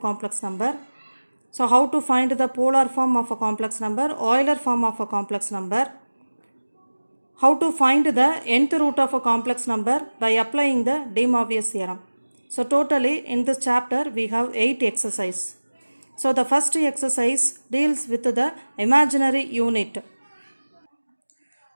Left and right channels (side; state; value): both; inverted; correlation -1.00